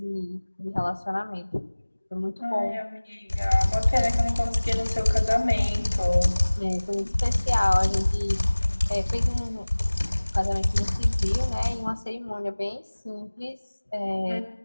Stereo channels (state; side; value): inverted; both; correlation -1.00